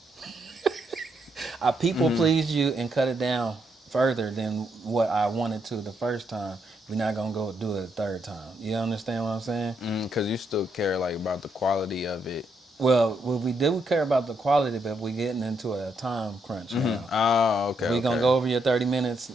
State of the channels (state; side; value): normal; both; correlation 0.77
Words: I people pleased you and cut it down further than what I wanted to the first time. We're not gonna go do it a third time. You understand what I'm saying? Because you still care like about the quality of it. Well, we do care about the quality, but we're getting into a time crunch now. Oh, okay. We're gonna Okay. go over your 30 minutes